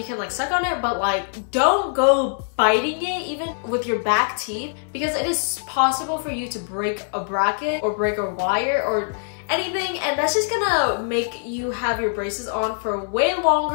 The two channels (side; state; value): right; silent; 59 dB below the other